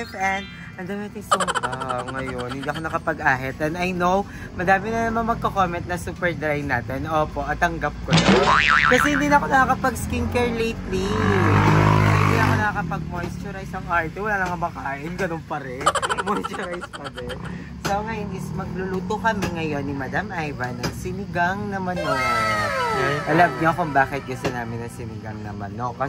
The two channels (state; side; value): identical; both; correlation 1.00